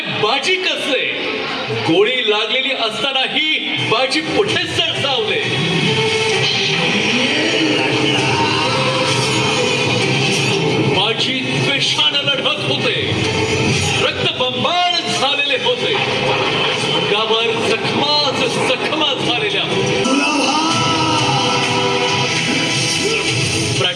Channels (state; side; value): identical; both; correlation 1.00